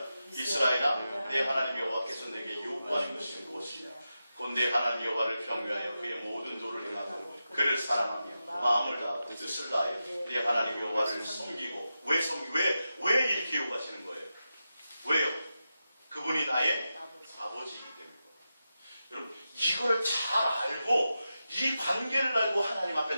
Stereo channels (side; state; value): both; inverted; correlation -0.90